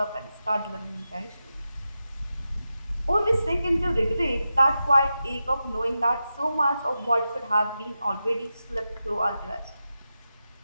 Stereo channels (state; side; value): inverted; both; correlation -0.91